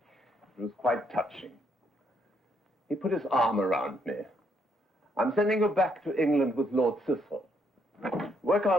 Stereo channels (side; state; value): both; normal; correlation 0.73